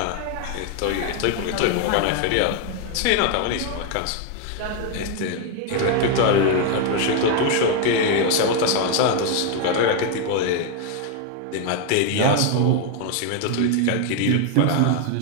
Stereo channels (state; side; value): different; both; correlation 0.01